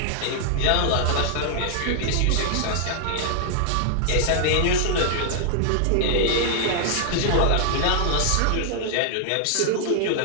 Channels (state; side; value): different; both; correlation -0.01